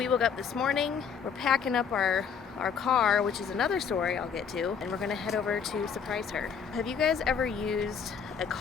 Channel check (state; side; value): quieter; right; 6.8 dB